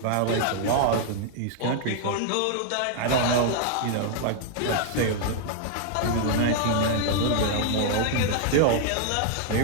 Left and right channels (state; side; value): different; both; correlation -0.01